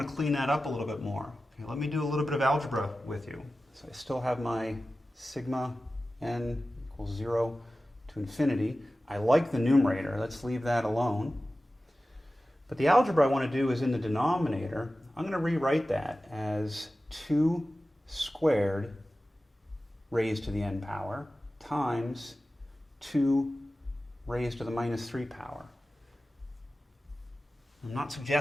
to clean that up a little bit more. Okay, let me do a little bit of algebra with you. So I still have my sigma n equals 0 to to infinity. I like the numerator. Let's leave that alone. But the algebra I want to do is in the denominator. I'm going to rewrite that as 2 squared raised to the n power times 2 raised to the minus 3 power. I'm not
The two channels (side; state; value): both; normal; correlation 0.95